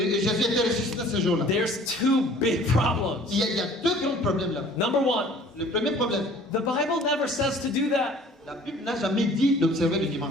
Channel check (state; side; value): normal; both; correlation 0.51